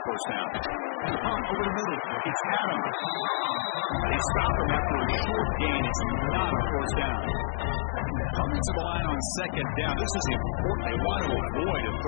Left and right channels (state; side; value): silent; right; digital silence